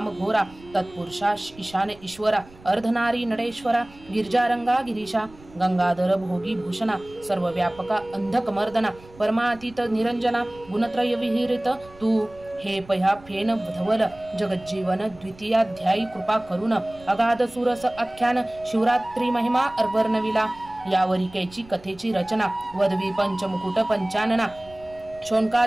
घोरा तत्पुरुषा ईशान ईश्वरा अर्धनारी नडेश्वरा गिरिजारंगा गिरीशा गंगाधर भोगी भूषणा सर्वव्यापका अंधक मर्दना परमातीत निरंजना गुणत्रय विहिरित तू हे पह्या फेन धवल जगज्जीवन द्वितीयाध्यायी कृपा करुण अगाध सुरस आख्यान शिवरात्री महिमा अर्वर्णविला यावरिकेची कथेची रचना वदवी पंचमुकुट पंचानना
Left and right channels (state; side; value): noise; right; rumble, 23 dB below the sound